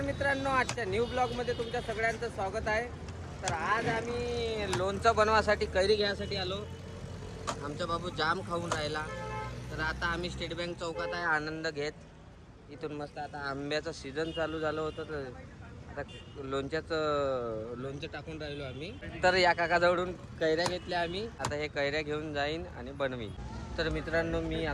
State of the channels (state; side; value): identical; both; correlation 1.00